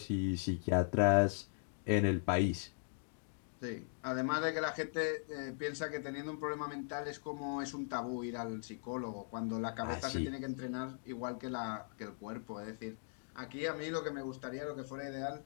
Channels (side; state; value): right; silent; digital silence